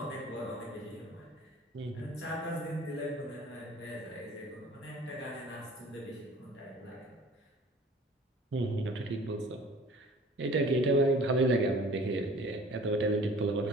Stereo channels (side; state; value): both; normal; correlation 0.48